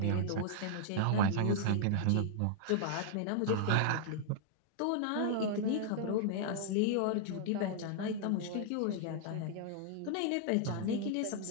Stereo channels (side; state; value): both; different; correlation -0.01